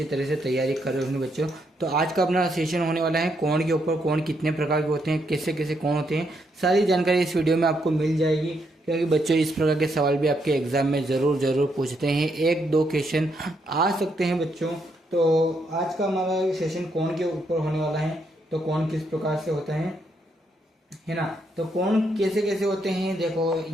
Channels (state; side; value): normal; both; correlation 0.77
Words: तरह से तैयारी कर रहे होंगे बच्चों। तो आज का अपना सेशन होने वाला है कोण के ऊपर। कोण कितने प्रकार के होते हैं, कैसे कैसे कोण होते हैं, सारी जानकारी इस वीडियो में आपको मिल जाएगी। क्योंकि बच्चों इस प्रकार के सवाल भी आपके एग्जाम में ज़रूर पूछते हैं, एक दो क्वेश्चन आ सकते हैं बच्चों। तो आज का हमारा सेशन कोण के ऊपर होने वाला है। तो कोण किस प्रकार से होता है ना। तो कोण कैसे कैसे होते हैं, देखो